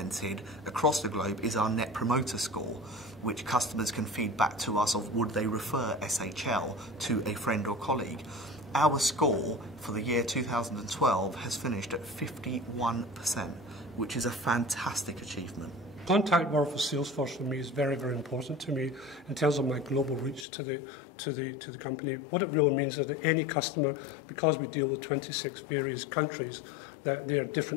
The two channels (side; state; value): right; drops out; at 20.5 s